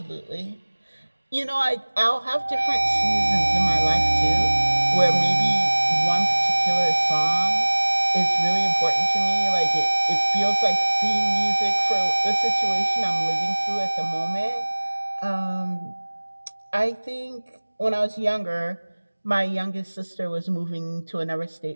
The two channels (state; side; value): inverted; both; correlation -1.00